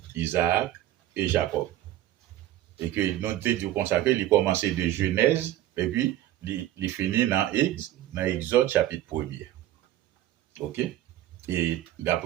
Isaac et Jacob. Et que nous avons consacré, il commençait de Genèse, et puis il finit dans Exode chapitre 1er. OK? Et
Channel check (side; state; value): left; quieter; 13.4 dB